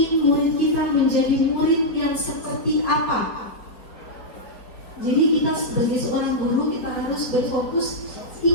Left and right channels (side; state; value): right; late; 4.3 ms